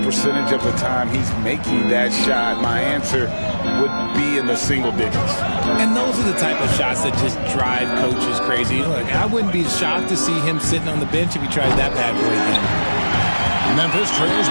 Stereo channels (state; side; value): inverted; both; correlation -1.00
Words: percentage of the time he's making that shot, my answer would be in the single digits. And those are the type of shots that just drive coaches crazy. Look, I wouldn't be shocked to see him sitting on the bench if he tried that bad boy again. Memphis trails